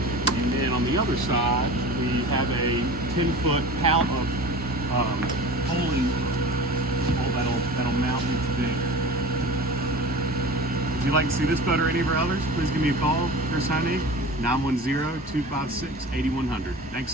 And then on the other side, we have a 10-foot pallet of poling pole that'll mount into there. If you'd like to see this boat or any of our others, please give me a call. Chris Honig, 910-256-8100. Thanks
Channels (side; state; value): both; normal; correlation 0.36